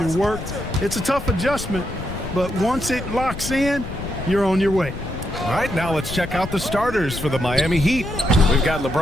work. It's a tough adjustment, but once it locks in, you're on your way. All right, now let's check out the starters for the Miami Heat. We've got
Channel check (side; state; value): left; noise; rumble, 9 dB below the sound